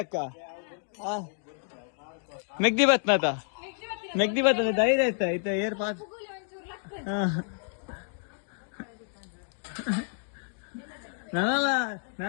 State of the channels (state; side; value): silent; right; digital silence